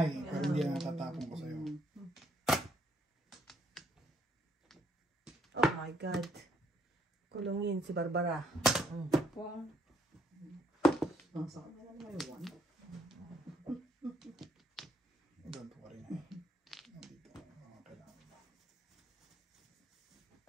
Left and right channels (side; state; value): both; normal; correlation 0.70